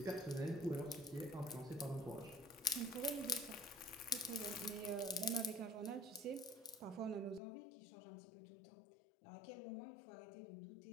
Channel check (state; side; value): drops out; right; at 7.4 s